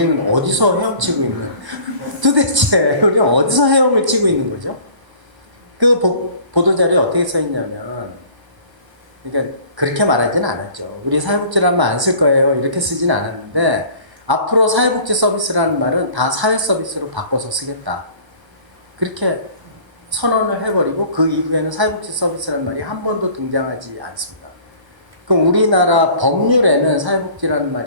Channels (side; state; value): left; late; 1.1 ms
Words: 어디서 헤엄치고 있는 도대체 우리는 어디서 헤엄을 치고 있는 거죠? 그 보도자료에 어떻게 써 있냐면 그러니까 그렇게 말하지는 않았죠. 우리 사회복지라는 말 안 쓸 거예요. 이렇게 쓰지는 않았는데 앞으로 사회복지 서비스라는 말은 다 사회 서비스로 바꿔서 쓰겠다. 그렇게 선언을 해버리고 그 이후에는 사회복지 서비스라는 말이 한 번도 등장하지 않습니다. 그럼 우리나라 법률에는 사회복지라는